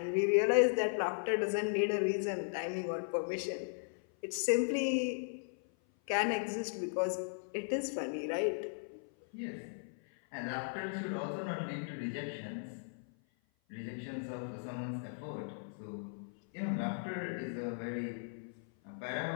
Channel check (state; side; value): silent; right; 53 dB below the other